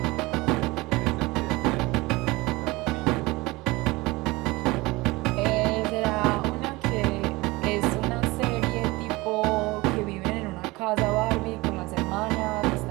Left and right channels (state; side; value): quieter; left; 22.0 dB